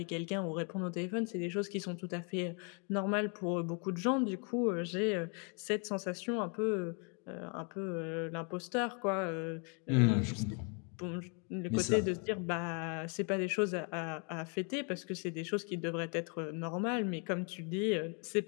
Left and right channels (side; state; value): right; quieter; 38.0 dB